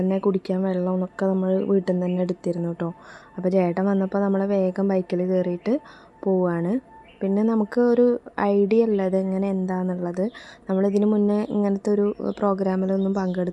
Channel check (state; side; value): identical; both; correlation 1.00